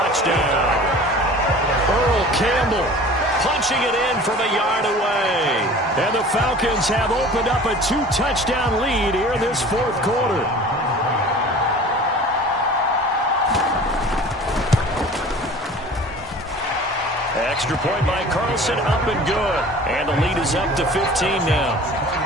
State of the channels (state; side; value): normal; both; correlation 0.43